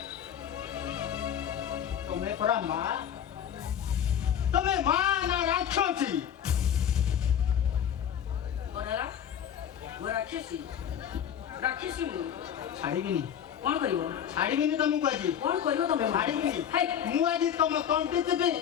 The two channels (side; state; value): right; quieter; 9.1 dB